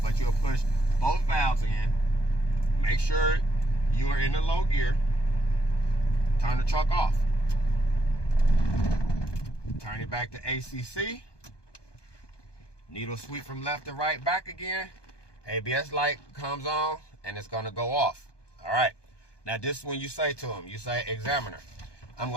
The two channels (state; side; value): late; right; 1.2 ms